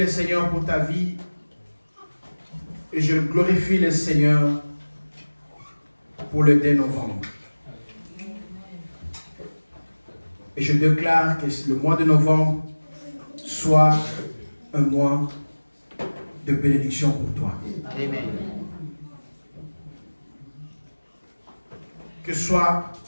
Seigneur pour ta vie. Et je glorifie le Seigneur pour le 2 novembre. Et je déclare que le mois de novembre soit un mois de bénédiction pour toi. Amen. Que soit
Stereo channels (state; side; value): inverted; both; correlation -1.00